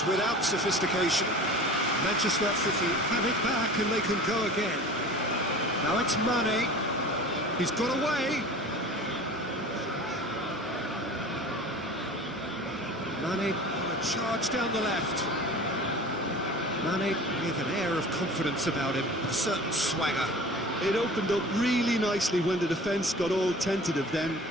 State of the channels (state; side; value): normal; both; correlation 0.40